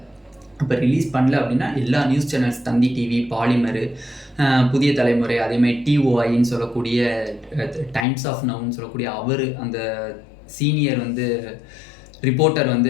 இப்போ ரிலீஸ் பண்ணல அப்படின்னா எல்லா நியூஸ் சேனல்ஸ், தந்தி டிவி, பாலிமர், புதிய தலைமுறை, அதேமாதிரி டிஓஐன்னு சொல்லக்கூடிய டைம்ஸ் ஆஃப் நவுன்னு சொல்லக்கூடிய அவர் அந்த சீனியர் வந்து ரிப்போர்ட்டர் வந்து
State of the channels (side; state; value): right; drops out; at 8.1 s